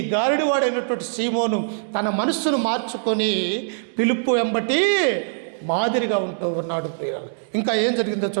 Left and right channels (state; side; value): silent; left; digital silence